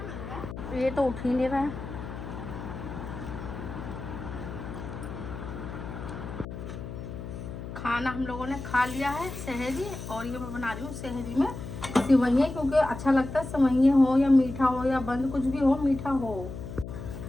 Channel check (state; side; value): noise; left; hum, 9 dB below the sound